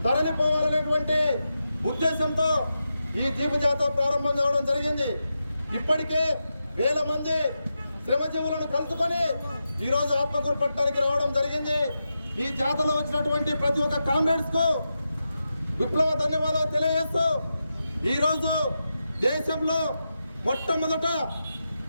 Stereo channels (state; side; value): inverted; both; correlation -0.89